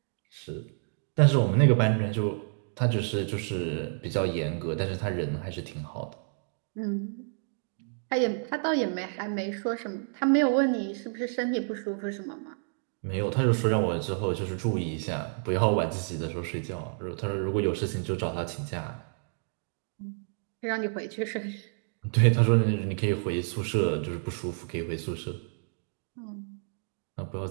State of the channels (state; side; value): silent; left; digital silence